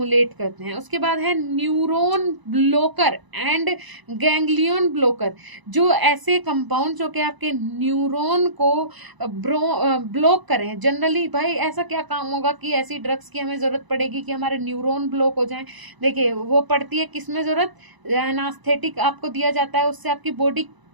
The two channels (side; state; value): left; late; 1.0 ms